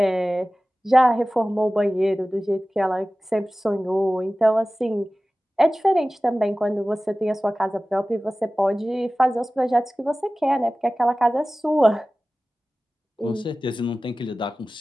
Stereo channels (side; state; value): both; normal; correlation 0.97